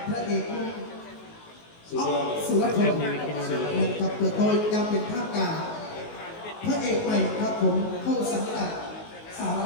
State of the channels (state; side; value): late; right; 19 ms